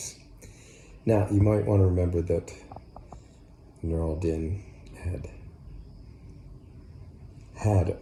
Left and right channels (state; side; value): identical; both; correlation 1.00